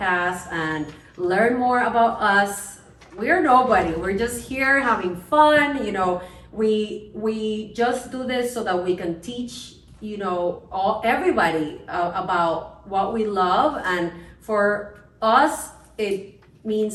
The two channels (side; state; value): both; identical; correlation 1.00